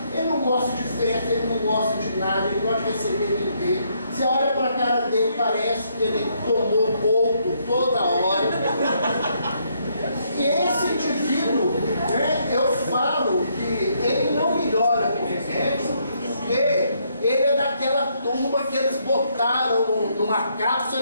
Ele não gosta de festa, ele não gosta de nada, ele não gosta de receber ninguém. Você olha para a cara dele, parece que ele tomou boldo toda hora. E esse indivíduo, né, eu falo que ele não melhora com remédio, porque ele é daquela turma que eles botaram numa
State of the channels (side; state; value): both; inverted; correlation -0.73